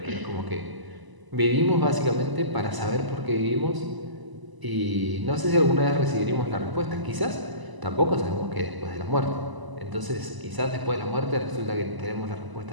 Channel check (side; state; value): left; late; 1.0 ms